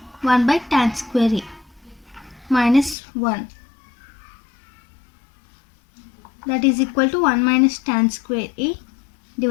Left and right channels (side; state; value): right; drops out; at 3.0 s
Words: 1 by tan square A minus 1. That is equal to 1 minus tan square A